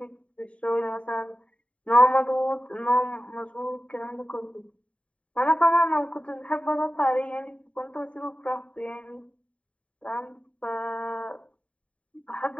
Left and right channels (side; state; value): right; late; 0.063 ms